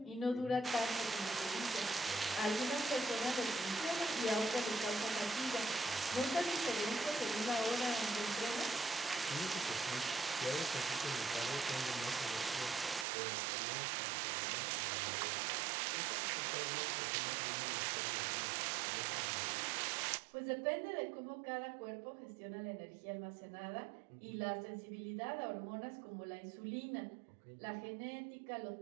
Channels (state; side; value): drops out; left; at 13.1 s